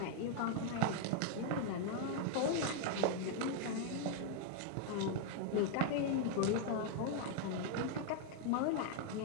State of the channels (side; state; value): both; different; correlation 0.00